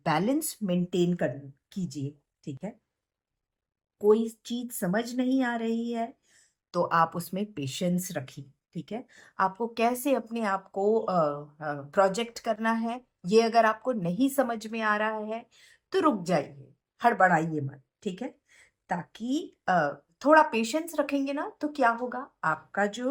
मेंटेन कर कीजिए, ठीक है? कोई चीज़ समझ नहीं आ रही है तो आप उसमें पेशेंस रखिए, ठीक है? आपको कैसे अपने आप को प्रोजेक्ट करना है, ये अगर आपको नहीं समझ में आ रहा है, तो रुक जाइए, हड़बड़ाइए मत, ठीक है? ताकि थोड़ा पेशेंस रखेंगे ना, तो क्या होगा, आपका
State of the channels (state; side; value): identical; both; correlation 1.00